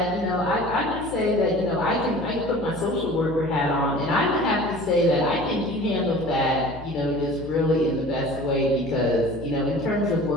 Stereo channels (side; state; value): left; noise; hum, 14 dB below the sound